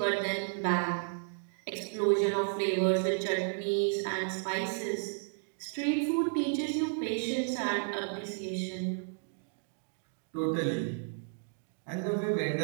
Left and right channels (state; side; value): silent; left; digital silence